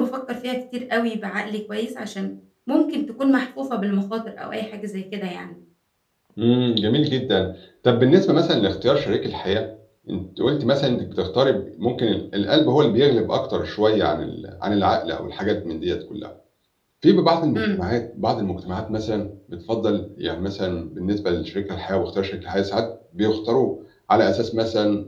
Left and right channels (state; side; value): identical; both; correlation 1.00